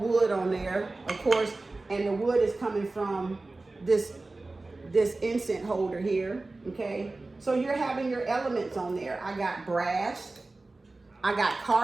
on there, of course, and the wood is coming from this incense holder here, okay? So you're having your elements on there. I got brass, I got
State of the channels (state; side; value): quieter; left; 3.2 dB